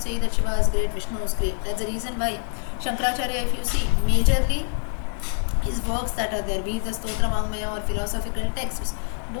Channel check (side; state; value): right; silent; 57 dB below the other